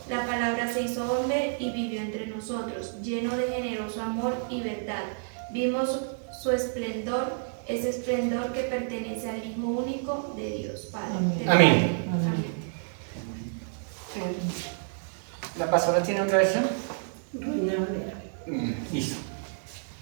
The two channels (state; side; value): silent; left; digital silence